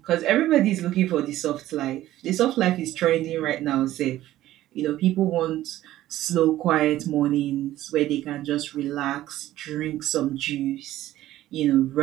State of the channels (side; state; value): left; quieter; 14.4 dB